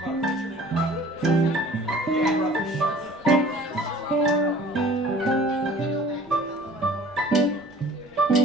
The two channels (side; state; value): left; noise; rumble, 29 dB below the sound